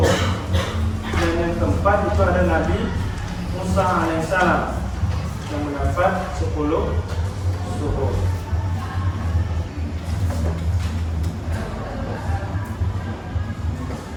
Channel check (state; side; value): identical; both; correlation 1.00